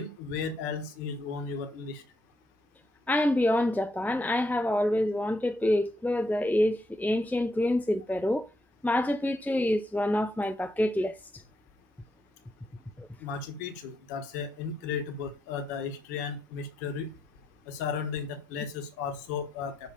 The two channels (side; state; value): both; normal; correlation 0.80